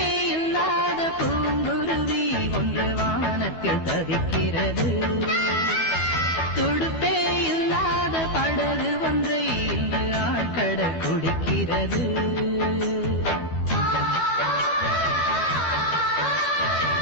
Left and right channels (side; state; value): right; late; 12 ms